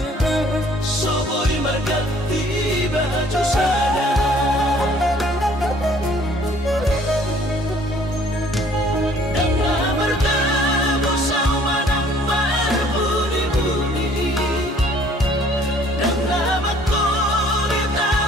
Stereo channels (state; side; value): normal; both; correlation 0.57